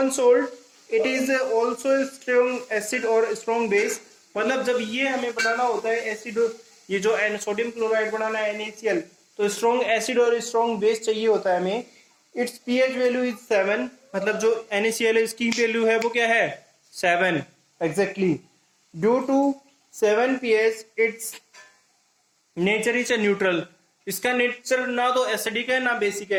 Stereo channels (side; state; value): both; identical; correlation 1.00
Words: salt, it is also strong acid और स्ट्रॉन्ग बेस। मतलब जब ये हमें बनाना होता है एसिड, ये जो सोडियम क्लोराइड बनाना है NaCl, तो स्ट्रॉन्ग एसिड और स्ट्रॉन्ग बेस चाहिए होता है हमें। इट्स pH वैल्यू इज 7, मतलब जो NaCl है इसकी वैल्यू है वो क्या है, 7 exactly. Due to 7 pH it's nature is neutral. इसका नेचर ना तो एसिडिक है ना बेसिक